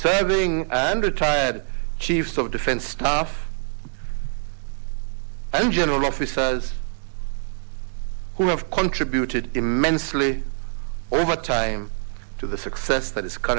and retired Chiefs of Defense Staff and general officers who have contributed immensely over time to to the success that is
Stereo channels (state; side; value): silent; left; digital silence